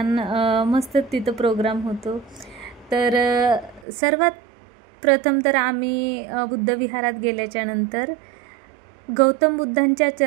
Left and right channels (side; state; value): left; drops out; at 3.9 s